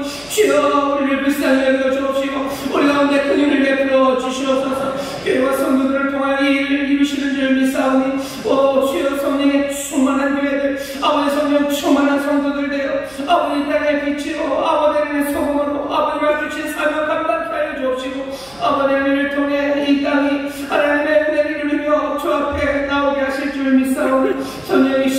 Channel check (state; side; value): noise; right; hum, 27 dB below the sound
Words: 주여, 우리를 불쌍히 여겨 주옵시고 우리 가운데 긍휼을 베풀어 주시옵소서. 교회와 성도들을 통하여 이 일을 이루시는 줄 믿사오니 주여, 성령의 충만한 교회들 아버지 성령 충만한 성도들 되어 아버지 땅의 빛으로 아버지 하나님의 소금으로 아버지가 주신 사명 감당케 하여 주옵시고 아버지 하나님을 통해 이 땅이 하나님의 은혜를 누리며 주 앞에 나오게 하실 줄 믿사오니